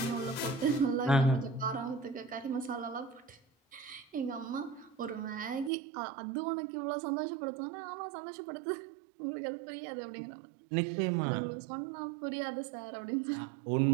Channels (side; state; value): left; drops out; at 5.7 s